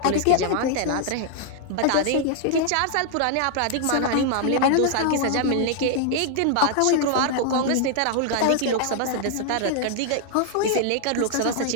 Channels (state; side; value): different; both; correlation 0.00